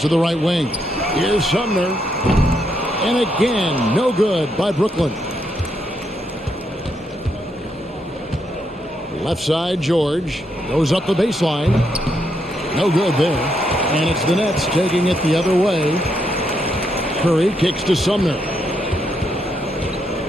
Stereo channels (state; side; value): normal; both; correlation 0.78